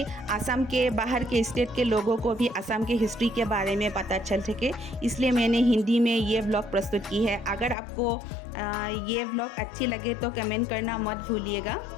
आसाम के बाहर के स्टेट के लोगों को भी आसाम के हिस्ट्री के बारे में पता चल सके, इसलिए मैंने हिंदी में ये ब्लॉग प्रस्तुत की है। अगर आपको ये ब्लॉग अच्छी लगे तो कमेंट करना मत भूलिएगा।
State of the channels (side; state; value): right; drops out; at 7.8 s